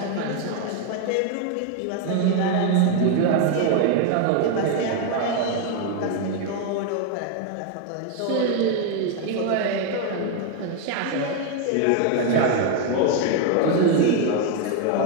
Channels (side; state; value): both; different; correlation 0.01